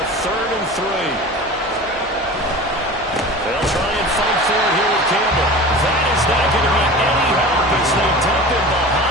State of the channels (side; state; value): both; normal; correlation 0.36